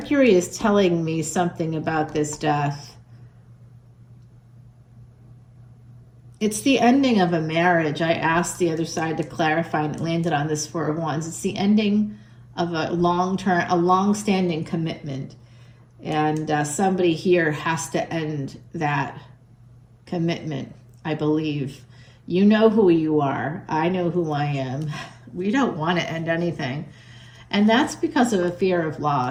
is telling me something about this death. It's the ending of a marriage. I asked the other side to clarify, and it landed on this 4 of Wands. It's the ending of a long-standing commitment. And somebody here has to end that commitment, I believe. You know who you are. I know who I am. We don't want to end anything. And that's because of a fear of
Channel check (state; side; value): identical; both; correlation 1.00